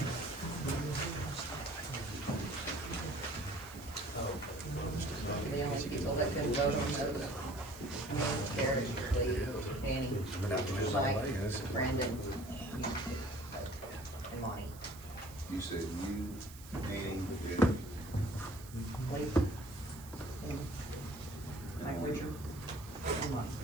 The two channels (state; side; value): noise; right; hiss, 18 dB below the sound